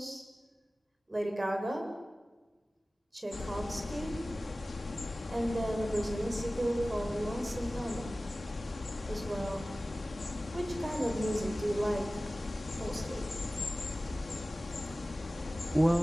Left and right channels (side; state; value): both; normal; correlation 0.97